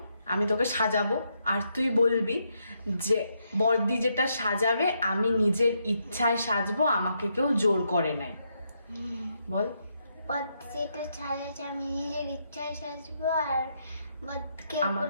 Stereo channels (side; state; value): both; inverted; correlation -0.79